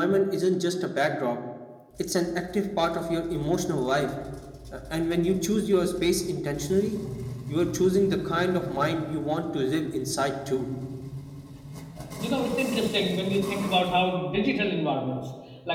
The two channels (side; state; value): both; identical; correlation 1.00